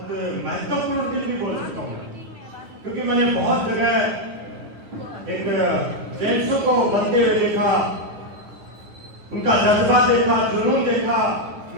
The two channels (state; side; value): late; left; 9.5 ms